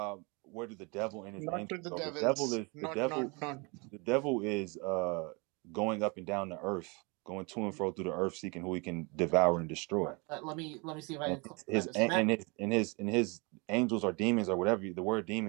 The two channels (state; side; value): quieter; left; 29.8 dB